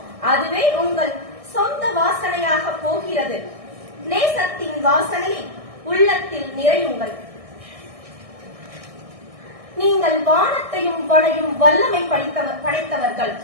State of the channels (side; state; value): left; late; 1.6 ms